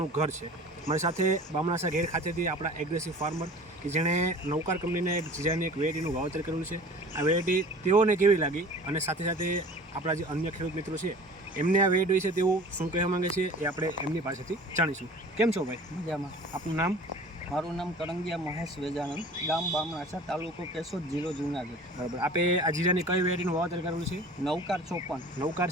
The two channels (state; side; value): normal; both; correlation 0.43